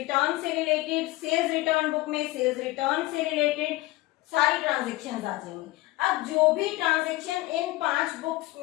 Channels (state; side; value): quieter; right; 19.3 dB